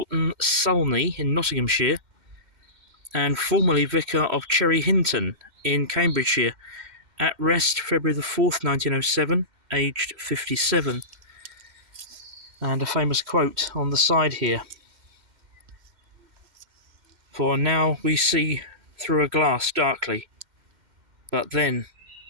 Sulney in Nottinghamshire, and formerly vicar of Cherry Hinton in Cambridgeshire, at rest February the 4th, 1907, aged 57. And a famous quote on the side here. For now we see through a glass darkly, but then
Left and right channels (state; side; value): late; left; 2.1 ms